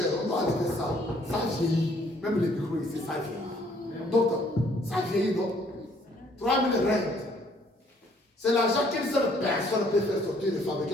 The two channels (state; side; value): normal; both; correlation 0.63